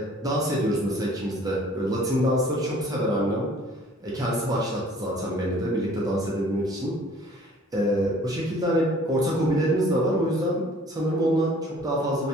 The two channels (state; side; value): normal; both; correlation 0.53